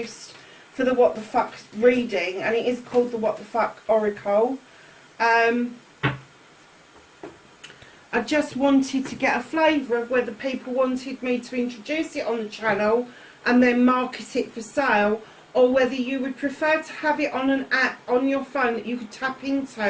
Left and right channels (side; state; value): both; identical; correlation 1.00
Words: for the What the Fuck reading, and it is called the What the Fuck Oracle. I just wanted to get a flavour of whether people wanted me to introduce it on the channel and then market it for sale, or whether you would prefer to have it on an app on your phone that you could tap